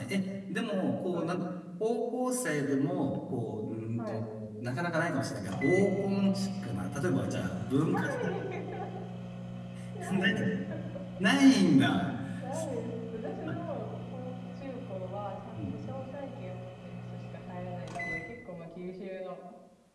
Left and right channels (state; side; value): identical; both; correlation 1.00